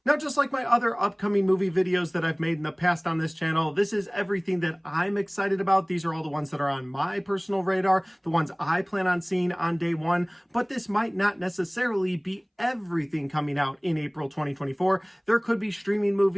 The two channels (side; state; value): both; identical; correlation 1.00